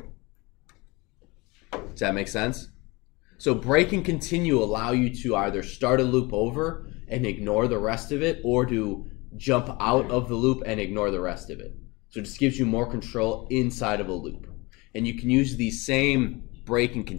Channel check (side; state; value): right; quieter; 24.6 dB